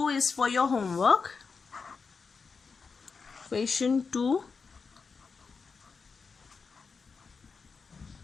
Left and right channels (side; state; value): right; quieter; 5.1 dB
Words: is for your homework. Question 2